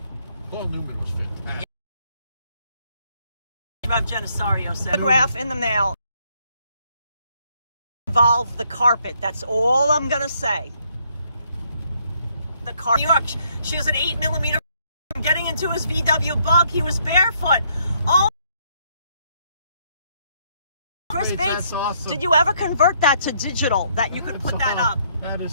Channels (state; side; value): inverted; both; correlation -0.70